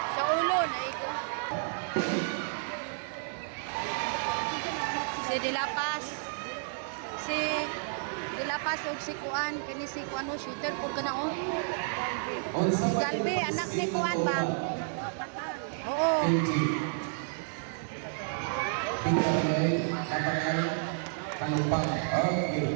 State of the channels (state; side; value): silent; left; digital silence